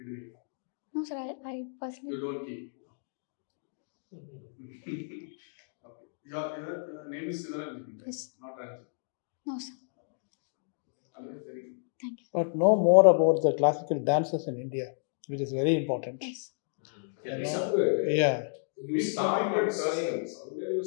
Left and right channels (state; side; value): silent; right; digital silence